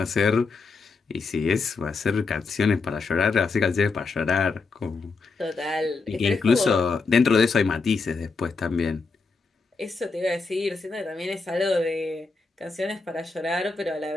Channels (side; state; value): right; quieter; 4.3 dB